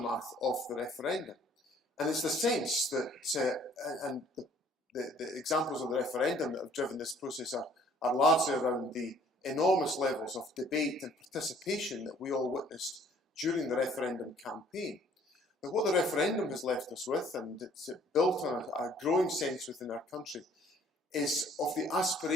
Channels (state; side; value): normal; both; correlation 0.58